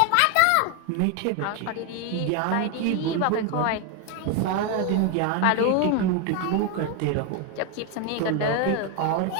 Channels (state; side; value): different; both; correlation 0.01